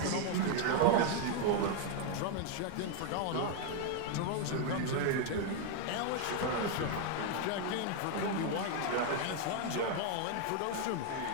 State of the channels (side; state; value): both; different; correlation 0.00